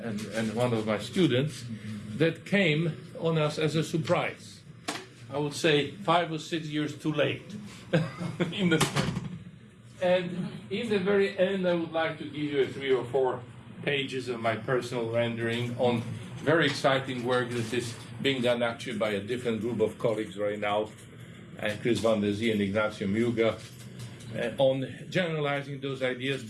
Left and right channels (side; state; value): both; identical; correlation 1.00